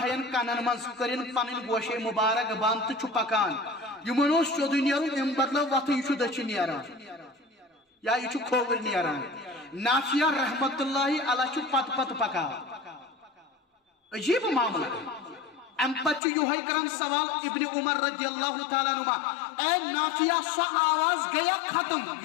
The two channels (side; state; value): right; drops out; at 16.2 s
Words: کنن مز کرن پنن گوشے مبارک بند تو پکان یمن سیود نیرن ام بدلو وت یہ دچھ نیران یا یہ کھوور نیران نافیہ رحمت اللہ علیہ پت پت پکان عجیب معاملہ ام پتہ یہ کران سوال ابن عمر رضی اللہ تعالیٰ عنہ اے نافیہ سو آواز گیا ختم